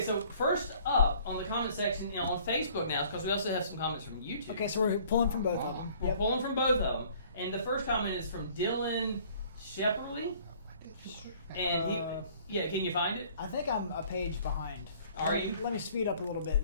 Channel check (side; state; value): both; inverted; correlation -0.55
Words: first up on the comment section, on Facebook now, because we also have some comments from YouTube. Okay, so we're pulling from both of them. We're pulling from both of them. And the first comment is from Dylan Shepperly. And can you find it? I think I'm a page behind. Are you? Let me speed up a little bit